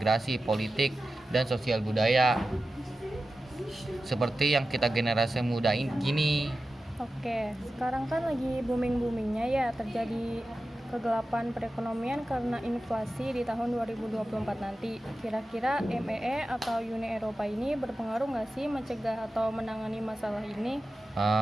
politik, dan sosial budaya. Seperti yang kita generasi muda gini. Oke, sekarang kan lagi booming-boomingnya ya terjadi kegelapan perekonomian karena inflasi di tahun 2024 nanti. Kira-kira MEE atau Uni Eropa ini berpengaruh nggak sih mencegah atau menangani masalah ini?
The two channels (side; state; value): both; normal; correlation 0.93